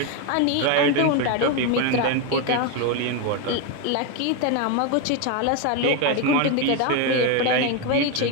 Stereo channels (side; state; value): both; different; correlation 0.02